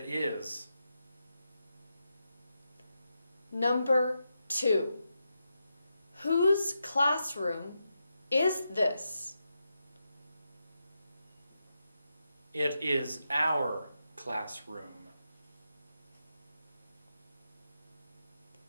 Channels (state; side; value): inverted; both; correlation -0.87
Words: is. Number 2. Whose classroom is this? It is our classroom.